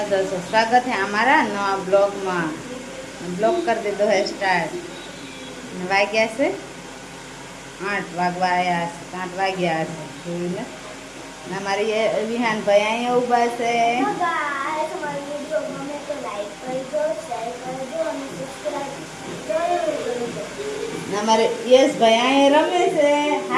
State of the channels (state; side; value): identical; both; correlation 1.00